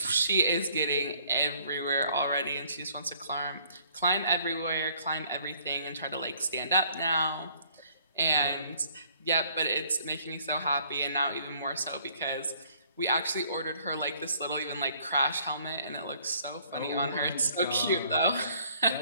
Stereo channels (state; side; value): inverted; both; correlation -0.61